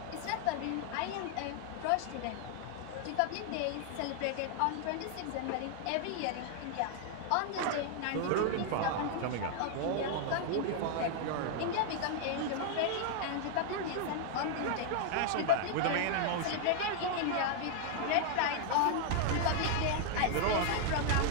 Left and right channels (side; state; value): both; different; correlation 0.00